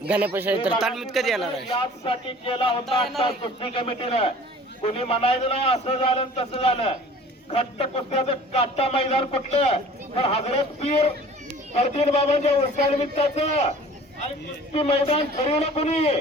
गणेश आहे तर तालमीत कधी येणार आहे. यासाठी केला होता आता कुस्ती कमिटीनं. कुणी म्हणायचं नाही असं झालं तसं झालं. खट्ट कुस्त्याचं काटा मैदान कुठलं तर हजरत पीर फर्दीन बाबांच्या वर्षानिमित्ताचं आणि कुस्ती मैदान ठरवलं कुणी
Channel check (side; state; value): both; normal; correlation 0.47